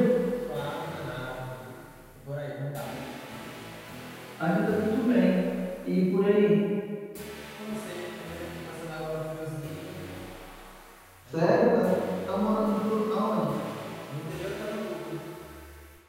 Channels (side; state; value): both; identical; correlation 1.00